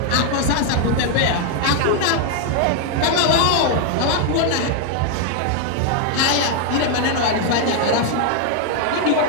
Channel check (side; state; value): both; different; correlation 0.00